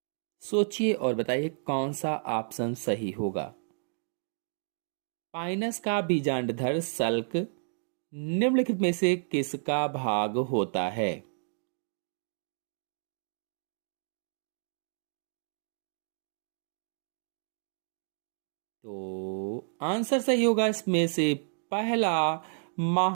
सोचिए और बताइए कौन सा ऑप्शन सही होगा। पाइनस का बीजांडधर सल्क निम्नलिखित में से किसका भाग होता है। तो आंसर सही होगा इसमें से पहला,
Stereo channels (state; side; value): silent; left; digital silence